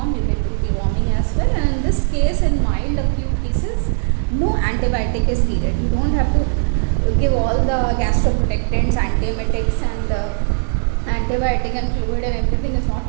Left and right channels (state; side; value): silent; left; digital silence